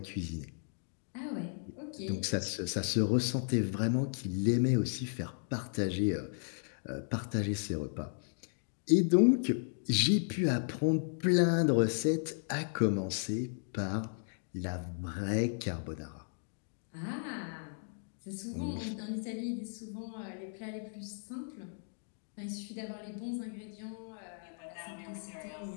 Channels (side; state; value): right; silent; digital silence